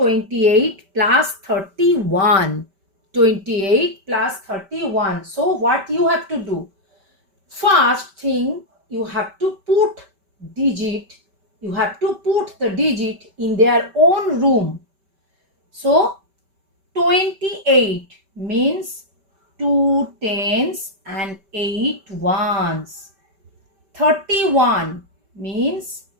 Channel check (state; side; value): late; left; 5.1 ms